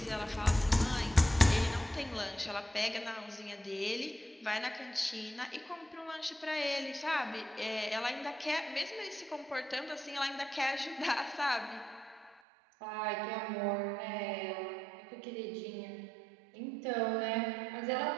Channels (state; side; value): drops out; left; at 12.4 s